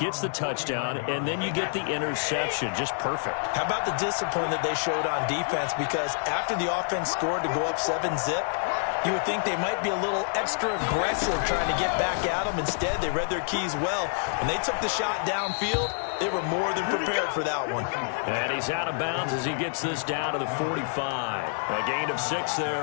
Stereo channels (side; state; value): right; silent; digital silence